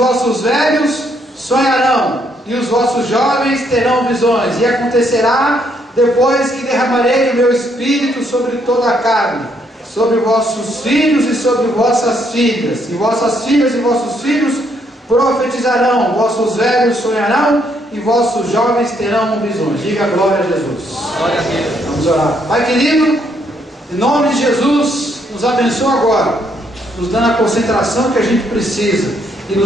velhos sonharão. E os vossos jovens terão visões. E acontecerá depois que derramarei o meu espírito sobre toda a carne. Sobre vossos filhos e sobre vossas filhas. E vossas filhas e vossos filhos profetizarão, vossos velhos sonharão e vossos jovens terão visões. Diga glória a Jesus. Glória a Deus. Vamos orar. Pai querido, em nome de Jesus, nos abençoa agora, nos dando a concentração que a gente precisa e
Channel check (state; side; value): normal; both; correlation 0.72